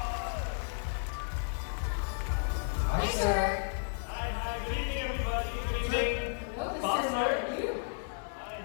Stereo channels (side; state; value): right; silent; 56 dB below the other